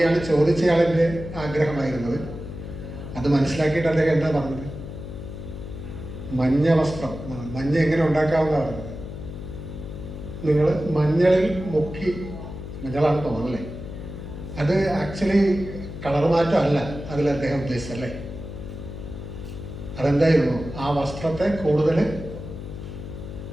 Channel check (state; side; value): noise; left; hum, 10 dB below the sound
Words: ചോദിച്ചയാളിൻ്റെ ആഗ്രഹമായിരുന്നത്. അത് മനസ്സിലാക്കിയിട്ട് അദ്ദേഹം എന്താ പറഞ്ഞത്? മഞ്ഞ വസ്ത്രം, മഞ്ഞ എങ്ങനെ ഉണ്ടാക്കാമെന്നാണ് പറഞ്ഞത്. നിങ്ങൾ മഞ്ഞളിൽ മുക്കി, മഞ്ഞളാണ് തോന്നല്ലേ, അത് ആക്ച്വലി കളർ മാറ്റം അല്ല അതിൽ അദ്ദേഹം ഉദ്ദേശിച്ചല്ലേ. അതെന്തായിരുന്നു? ആ വസ്ത്രത്തെ കൂടുതൽ